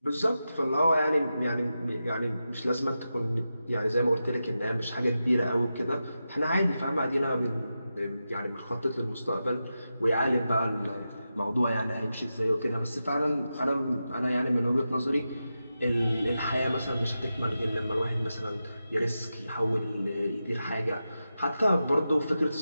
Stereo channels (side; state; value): both; inverted; correlation -0.90